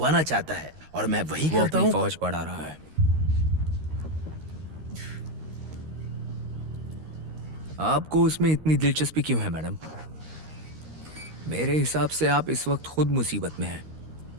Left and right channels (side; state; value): left; late; 13 ms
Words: चाहता है, और मैं वही वो करता अपनी हूँ। फौज बढ़ा रहा है। आपको उसमें इतनी दिलचस्पी क्यों है मैडम? मेरे हिसाब से आप इस वक्त खुद मुसीबत में हैं।